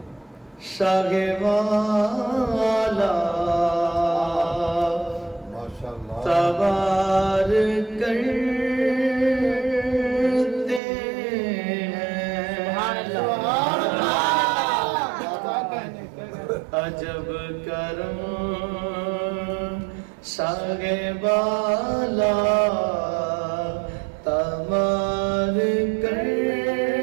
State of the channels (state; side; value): drops out; left; at 10.8 s